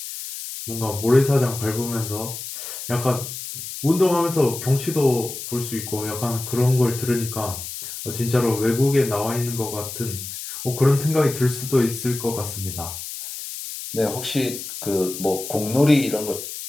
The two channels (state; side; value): noise; left; hiss, 9 dB below the sound